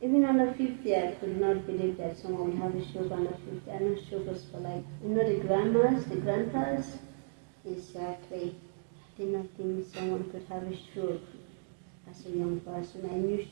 under 50, I could not believe that someone would have a stroke under 50. I know stroke was for like, the grandmas, the grandpas. Exactly. I did not think someone could have a stroke as a young person. I knew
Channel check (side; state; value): left; silent; digital silence